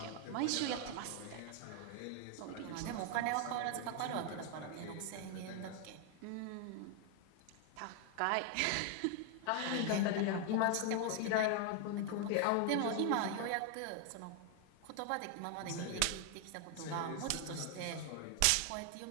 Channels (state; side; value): different; both; correlation 0.00